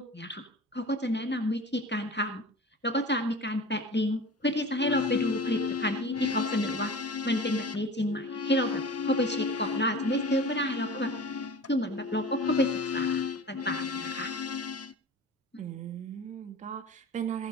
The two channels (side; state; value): both; normal; correlation 0.37